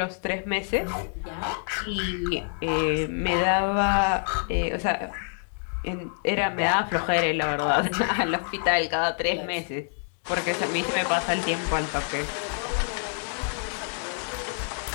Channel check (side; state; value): right; silent; 60 dB below the other